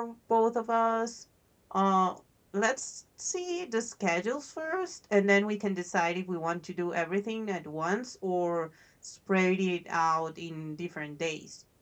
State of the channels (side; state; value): both; identical; correlation 1.00